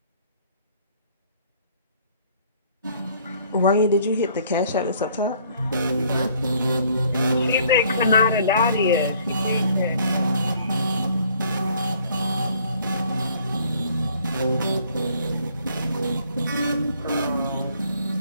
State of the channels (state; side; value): inverted; both; correlation -0.60